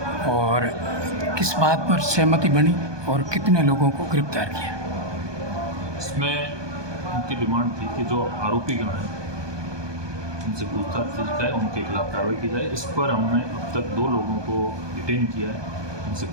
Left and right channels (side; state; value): left; late; 1.2 ms